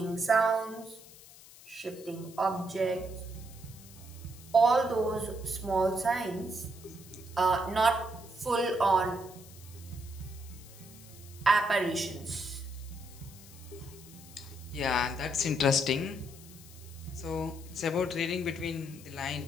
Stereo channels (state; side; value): noise; left; hiss, 19 dB below the sound